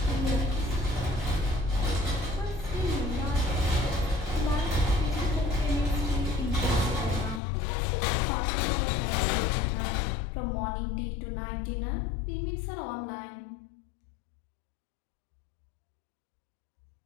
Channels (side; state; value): right; drops out; at 7.4 s